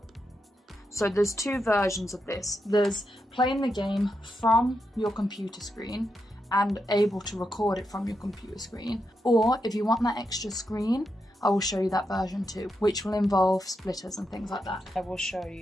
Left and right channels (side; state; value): both; normal; correlation 0.85